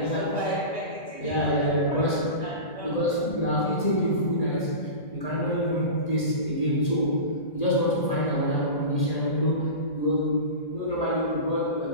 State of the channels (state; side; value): late; right; 1.8 ms